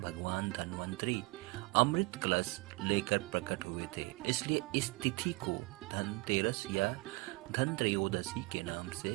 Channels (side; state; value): left; quieter; 24.5 dB